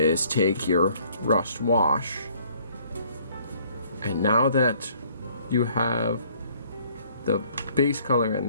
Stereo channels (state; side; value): inverted; both; correlation -0.60